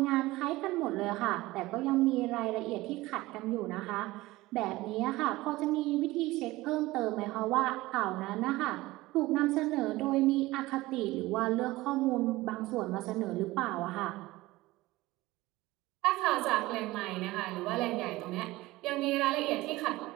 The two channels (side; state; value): left; quieter; 19.1 dB